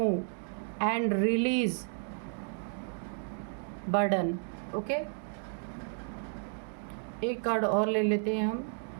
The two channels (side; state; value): left; silent; 56 dB below the other